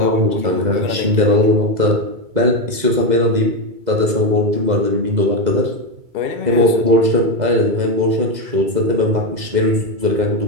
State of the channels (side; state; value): left; late; 2.0 ms